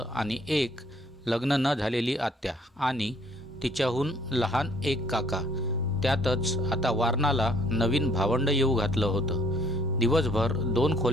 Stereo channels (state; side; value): normal; both; correlation 0.62